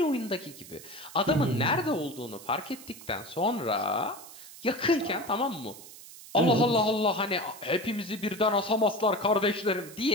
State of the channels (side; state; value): right; noise; hiss, 17 dB below the sound